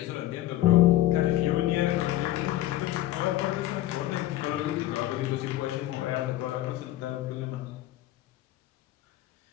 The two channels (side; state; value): right; quieter; 14.8 dB